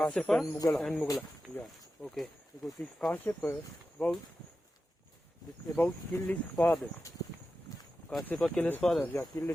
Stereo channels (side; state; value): both; normal; correlation 0.92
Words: and Mugala. And Mughal. Yeah. Okay. Because this Kashyapa about kill his father. Kashyapa killed his father. Yeah, kill